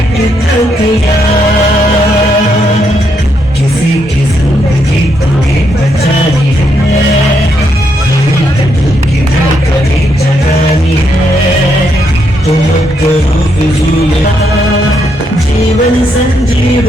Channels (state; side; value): normal; both; correlation 0.77